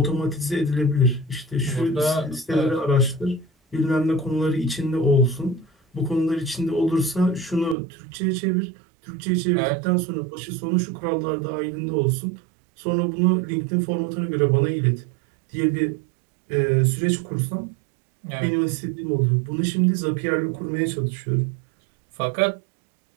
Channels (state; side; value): drops out; left; at 7.8 s